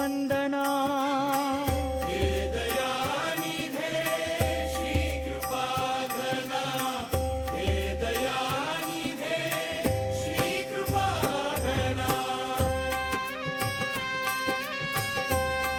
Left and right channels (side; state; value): both; identical; correlation 1.00